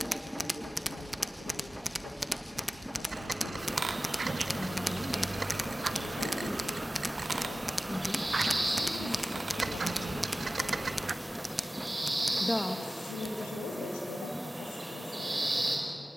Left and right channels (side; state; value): both; normal; correlation 0.96